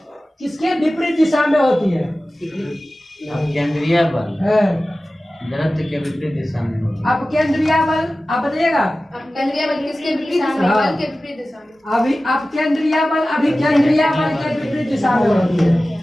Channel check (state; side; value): normal; both; correlation 0.96